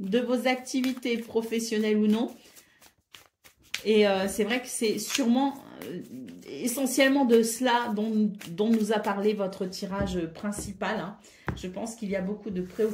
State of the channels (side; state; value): both; identical; correlation 1.00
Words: vos activités professionnelles ou non. Et c'est vrai que c'est sûrement essentiellement de cela dont nous a parlé votre tirage principal. Hein. Je pense qu'il y a beaucoup de